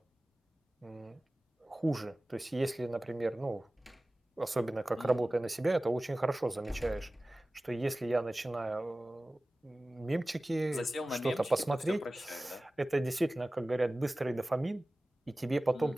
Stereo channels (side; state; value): both; normal; correlation 0.97